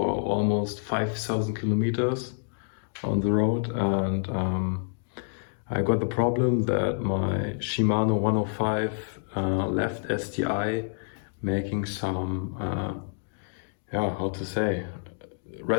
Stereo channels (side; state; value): right; silent; digital silence